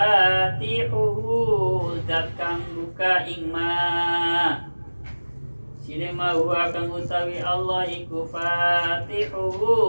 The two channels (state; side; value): inverted; both; correlation -1.00